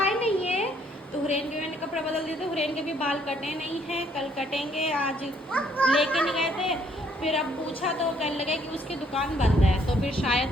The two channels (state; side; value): normal; both; correlation 0.66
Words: नहीं है। तो हुरैन के मैंने कपड़े बदल दिए थे, हुरैन के भी बाल कटे नहीं हैं, कल कटेंगे, आज लेके नहीं गए थे। फिर अब पूछा तो कहने लगे कि उसकी दुकान बंद है, तो फिर